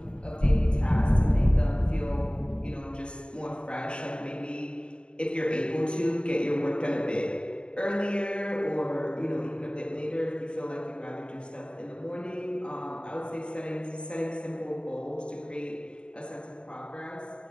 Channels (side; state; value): right; late; 0.053 ms